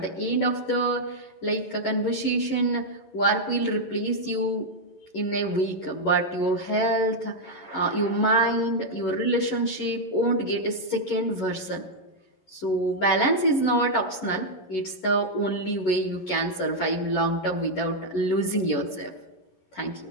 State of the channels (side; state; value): right; late; 11 ms